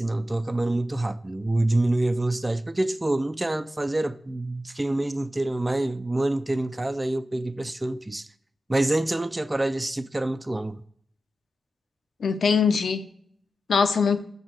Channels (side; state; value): both; normal; correlation 0.92